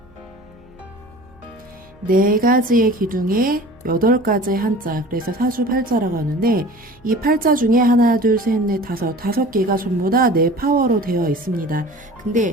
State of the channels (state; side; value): noise; right; hum, 29 dB below the sound